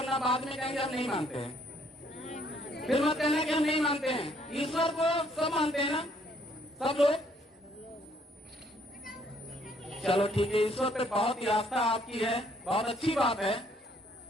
बाद में कहेंगे हम नहीं मानते हैं। फिर मत कहना कि हम नहीं मानते हैं। ईश्वर को सब मानते हैं ना, सब लोग? चलो ठीक है, ईश्वर पे बहुत ही आस्था आपकी है, बहुत अच्छी बात है।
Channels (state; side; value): normal; both; correlation 0.66